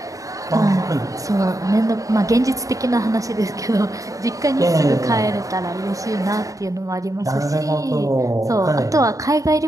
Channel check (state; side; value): late; left; 0.16 ms